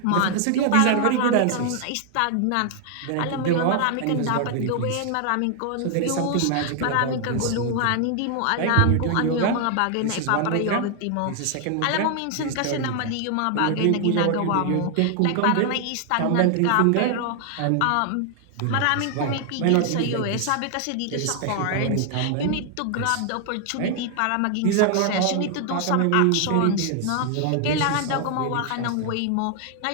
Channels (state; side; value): different; both; correlation 0.00